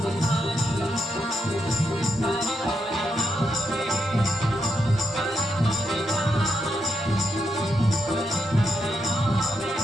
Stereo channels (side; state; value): both; normal; correlation 0.82